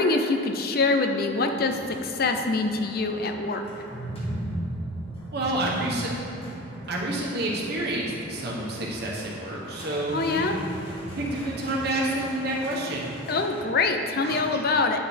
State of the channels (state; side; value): normal; both; correlation 0.26